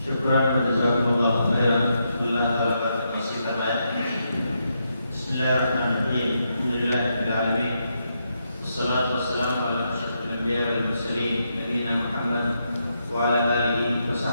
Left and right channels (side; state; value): both; inverted; correlation -0.81